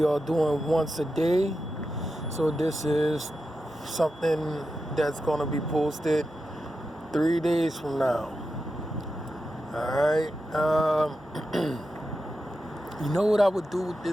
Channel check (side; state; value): both; normal; correlation 0.90